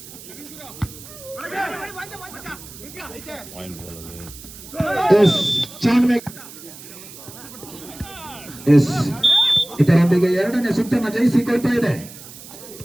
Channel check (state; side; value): noise; right; hiss, 16 dB below the sound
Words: ಎಸ್ ಚಾನ್ಮೇಕ್ ಎಸ್ ಇದರೊಂದಿಗೆ ಎರಡನೇ ಸುತ್ತನ್ನು ಜಯಿಸಿಕೊಳ್ತಾ ಇದೆ.